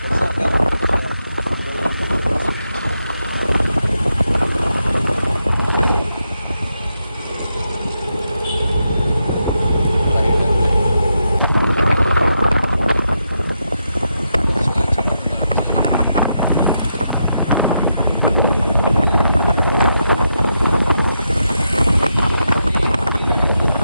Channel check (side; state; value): both; inverted; correlation -0.83